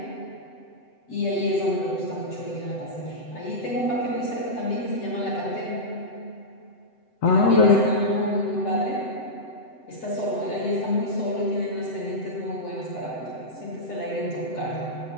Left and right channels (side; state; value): right; late; 7.9 ms